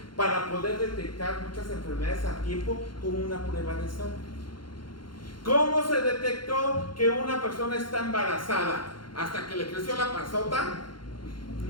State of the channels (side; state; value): right; late; 0.72 ms